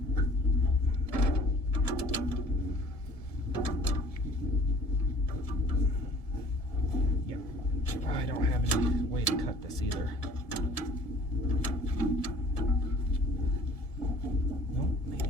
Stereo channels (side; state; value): right; late; 1.7 ms